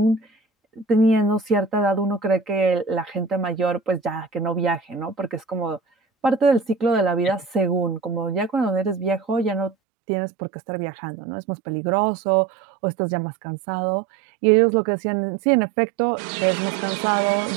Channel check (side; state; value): left; drops out; at 9.8 s